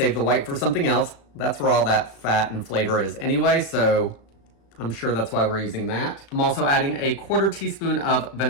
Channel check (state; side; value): late; right; 36 ms